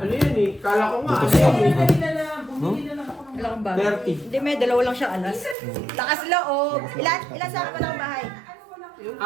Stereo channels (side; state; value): left; drops out; at 5.6 s